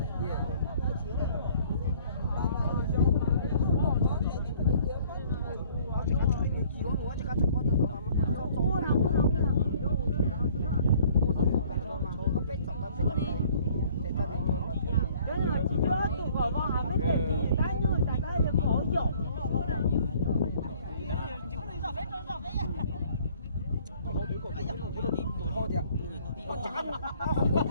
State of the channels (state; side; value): inverted; both; correlation -0.56